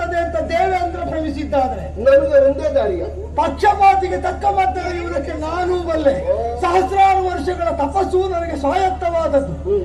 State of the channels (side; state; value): both; identical; correlation 1.00